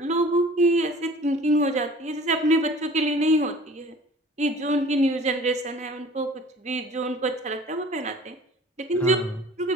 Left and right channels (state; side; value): normal; both; correlation 0.47